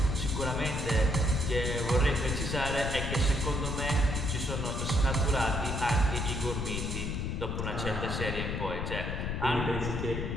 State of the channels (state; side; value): noise; left; rumble, 2 dB below the sound